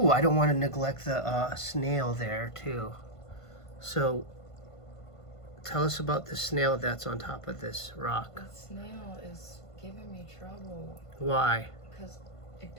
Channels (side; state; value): right; late; 1.5 ms